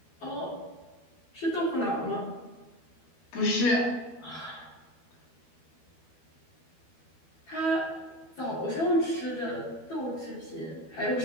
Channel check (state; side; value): late; right; 12 ms